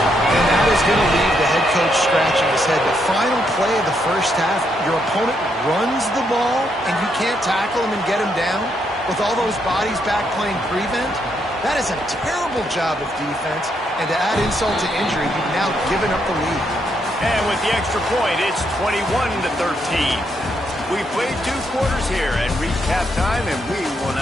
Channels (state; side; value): normal; both; correlation 0.77